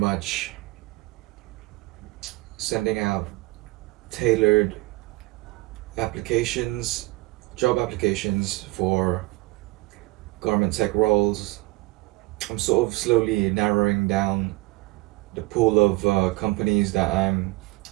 sending out tailored applications, job applications for garment tech roles. I'm sort of slowly narrowing down the pool of companies that I'm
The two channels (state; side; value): quieter; left; 21.3 dB